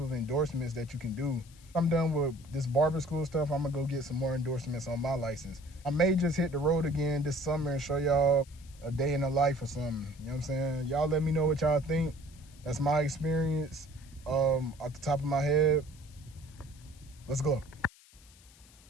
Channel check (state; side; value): noise; left; hiss, 25 dB below the sound